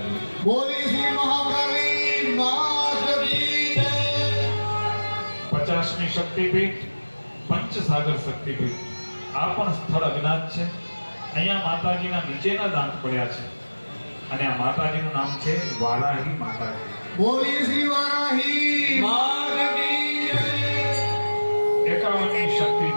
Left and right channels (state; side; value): inverted; both; correlation -1.00